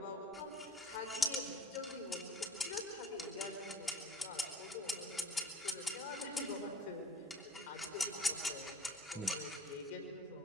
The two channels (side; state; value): both; normal; correlation 0.45